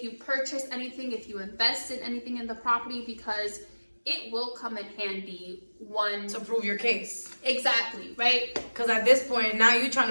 you purchase anything, if you invest in anything in the property, because it will come in handy To prove your case. Exactly, right? Because at this point, now you're trying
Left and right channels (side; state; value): both; inverted; correlation -1.00